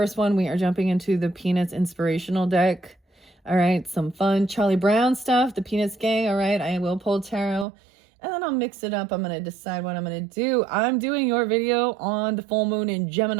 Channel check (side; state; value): left; drops out; at 7.7 s